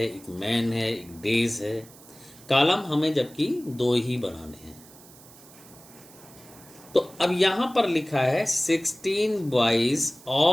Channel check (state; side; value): noise; right; hiss, 22 dB below the sound